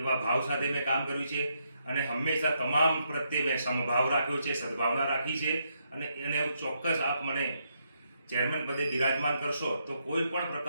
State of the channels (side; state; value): both; inverted; correlation -0.78